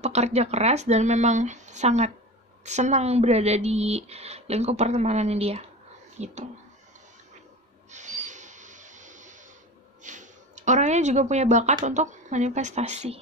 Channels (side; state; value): both; normal; correlation 0.31